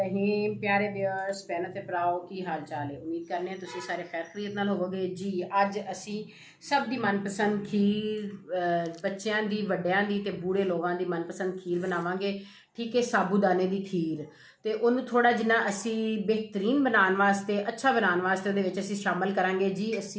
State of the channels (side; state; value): both; identical; correlation 1.00